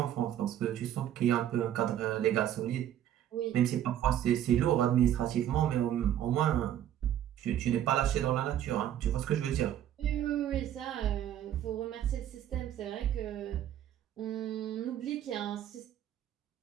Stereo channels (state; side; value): quieter; left; 11.1 dB